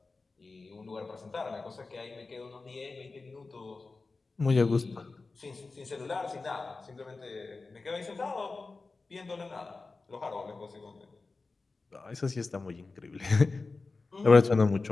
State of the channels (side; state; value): right; quieter; 3.8 dB